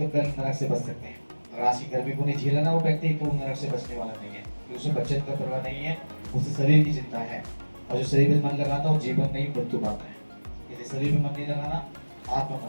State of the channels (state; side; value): inverted; both; correlation -1.00